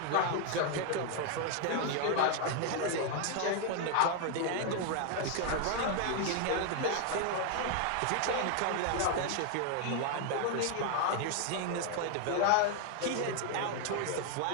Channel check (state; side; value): different; both; correlation 0.00